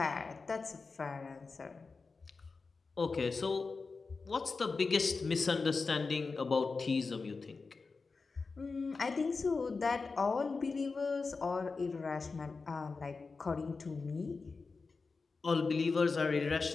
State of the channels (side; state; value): right; quieter; 4.3 dB